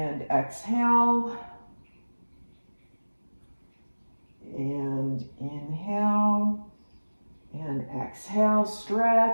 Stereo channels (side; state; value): both; inverted; correlation -1.00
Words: exhale. And inhale and exhale,